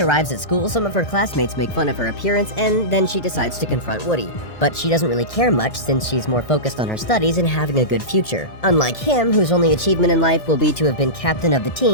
arrives at school, some of her classmates make fun of her appearance, and then she decides to confront Woody. But she doesn't really care much since she's more focused on her studies and having a good future. Unlike him, whose only achievement in life will be to have been captain of the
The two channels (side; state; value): right; late; 1.6 ms